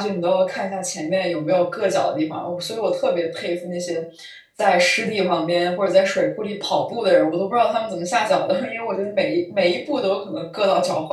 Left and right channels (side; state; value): both; identical; correlation 1.00